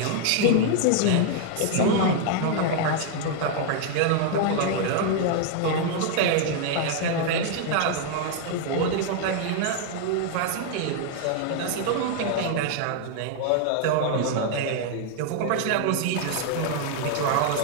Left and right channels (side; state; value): both; different; correlation 0.00